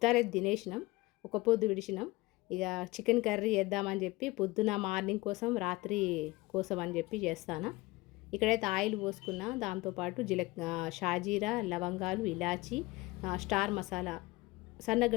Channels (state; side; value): quieter; right; 21.1 dB